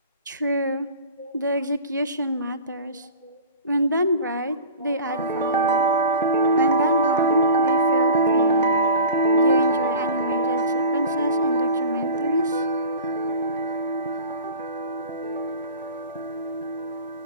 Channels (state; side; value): inverted; both; correlation -0.38